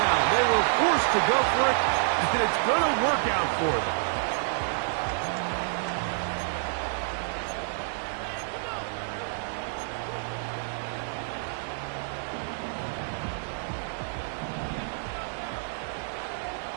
They were forced to go for it, and it's going to work out for them.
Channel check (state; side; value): silent; left; digital silence